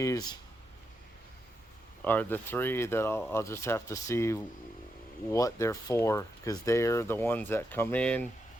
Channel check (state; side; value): normal; both; correlation 0.84